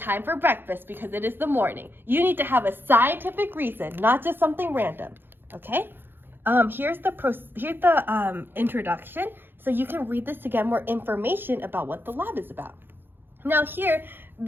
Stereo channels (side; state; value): left; late; 0.10 ms